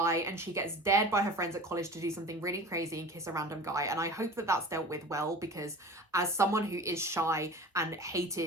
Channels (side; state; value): both; normal; correlation 0.38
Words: and she gets dared by her friends at college to do something really crazy and kiss a random guy. And I hope that that's dealt with well, because as someone who is shy and